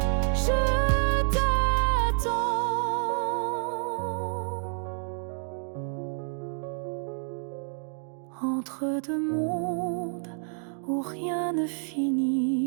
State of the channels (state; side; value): silent; left; 59 dB below the other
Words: Je t'attends. Entre deux mondes où rien ne